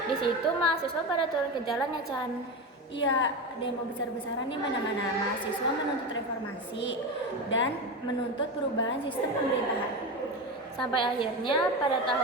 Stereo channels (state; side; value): normal; both; correlation 0.21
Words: Di situ mahasiswa pada turun ke jalan ya Chan. Iya, demo besar-besaran di mana-mana. Mahasiswa menuntut reformasi dan menuntut perubahan sistem pemerintahan. Sampai akhirnya pada